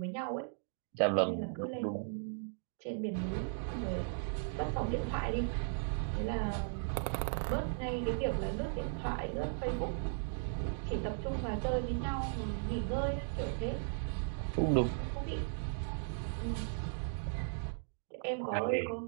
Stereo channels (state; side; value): silent; left; digital silence